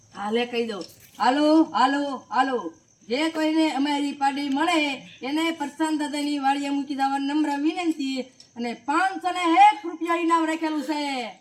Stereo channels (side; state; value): both; identical; correlation 1.00